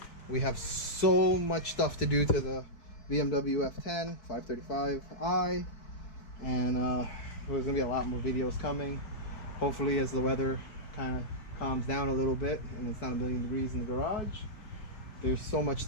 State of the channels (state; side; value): late; right; 4.6 ms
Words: We have so much stuff to do to the BMW F10 535i, and there's gonna be a lot more videos coming. Hopefully, as the weather kind of calms down a little bit and it's not a million degrees in the garage. There's so much